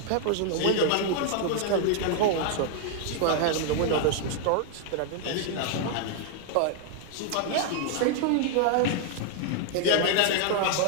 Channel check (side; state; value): both; different; correlation 0.00